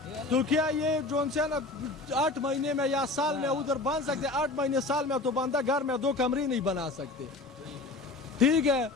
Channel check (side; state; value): right; quieter; 3.2 dB